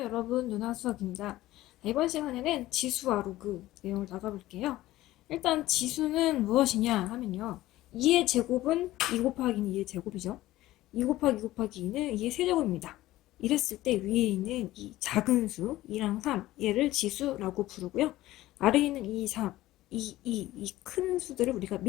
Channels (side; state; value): right; quieter; 16.2 dB